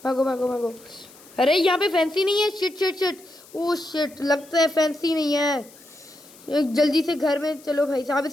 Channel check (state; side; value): noise; left; hiss, 23 dB below the sound